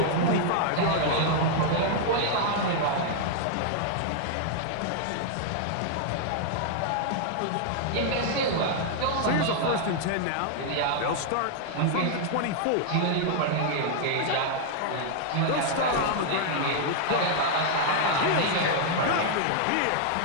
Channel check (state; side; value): different; both; correlation 0.00